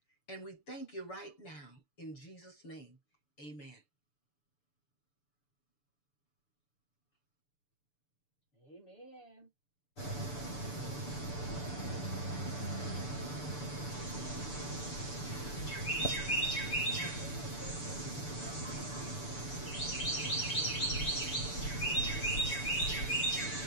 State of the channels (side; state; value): right; late; 6.9 ms